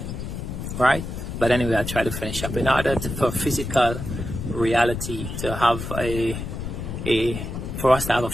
right? But anyway, I'll try to finish up. In order for physical reality to have for us to have a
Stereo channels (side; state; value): left; noise; rumble, 6 dB below the sound